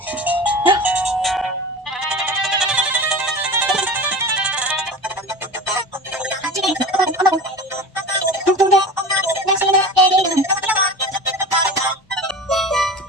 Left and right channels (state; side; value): normal; both; correlation 0.34